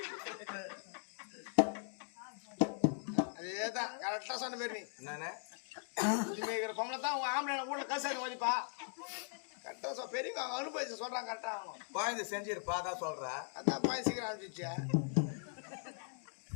அதேதான் கரெக்டா சொன்ன பேர். நீ என்னண்ணே பொம்பளை தான் உங்க ஆம்பளை வீட்டுல கசாரி மதிப்பா. கரெக்டா பெரியவங்க அவங்க அனுபவிச்சு சொல்றாங்க. கரெக்டா அவங்க குழந்தை செஞ்சிருப்பா தான் சொல்றா. அதான் பாய் சீக்கிரம் அனுப்பிச்சு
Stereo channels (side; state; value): right; silent; digital silence